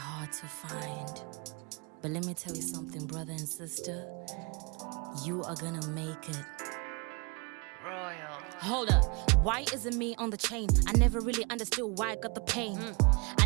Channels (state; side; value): quieter; left; 30.6 dB